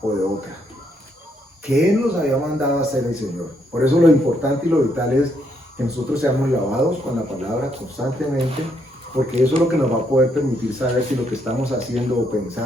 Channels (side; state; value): both; normal; correlation 0.74